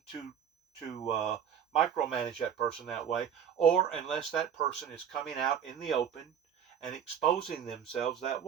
to micromanage that person that way, or unless that person is coming out in the open and exposing themselves that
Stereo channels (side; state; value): left; quieter; 8.4 dB